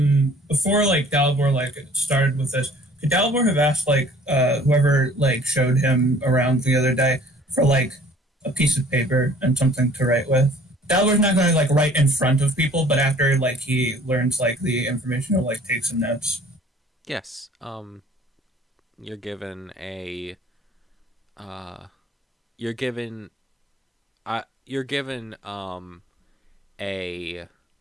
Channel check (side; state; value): both; normal; correlation 0.53